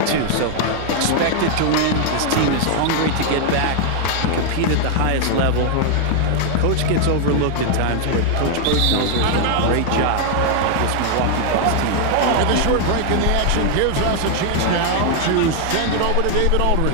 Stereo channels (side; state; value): both; different; correlation 0.00